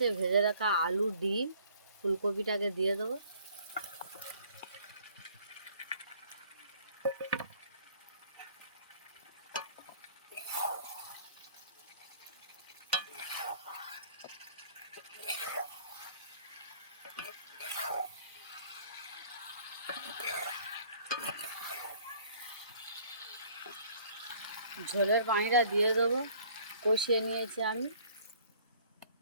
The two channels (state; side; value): inverted; both; correlation -0.56